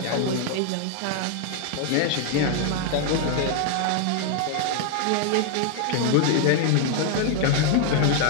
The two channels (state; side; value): different; both; correlation 0.00